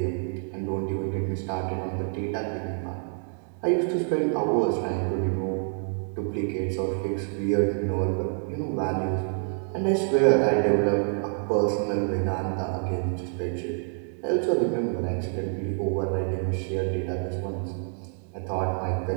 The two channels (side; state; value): left; silent; 55 dB below the other